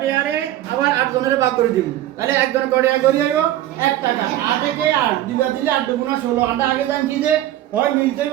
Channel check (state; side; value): quieter; left; 13.6 dB